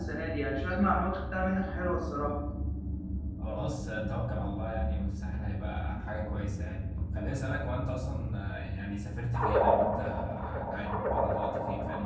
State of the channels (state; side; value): identical; both; correlation 1.00